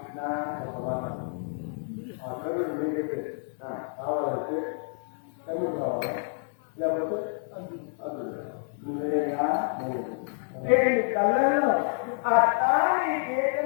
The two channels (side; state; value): right; silent; 59 dB below the other